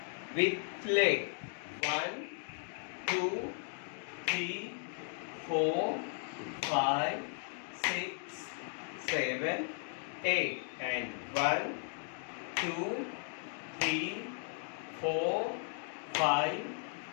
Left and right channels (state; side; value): silent; right; 54 dB below the other